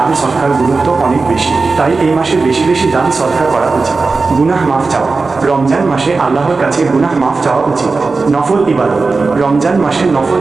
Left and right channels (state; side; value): quieter; left; 4.0 dB